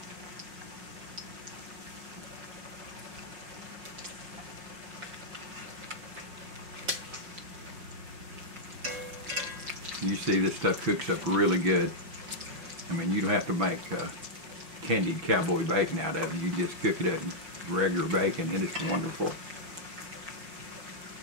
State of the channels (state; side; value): late; left; 6.0 ms